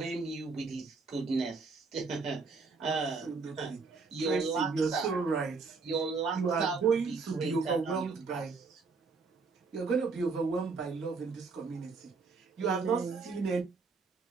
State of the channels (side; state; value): left; quieter; 4.5 dB